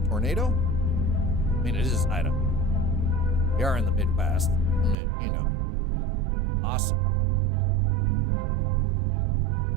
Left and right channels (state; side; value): drops out; left; at 5.0 s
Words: Tornado? I mean, it is Idaho. We are in the Midwest. I mean, you know. Awesome.